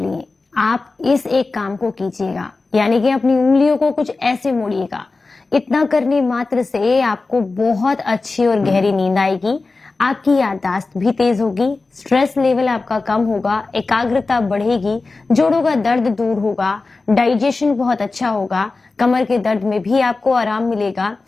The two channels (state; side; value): quieter; right; 3.7 dB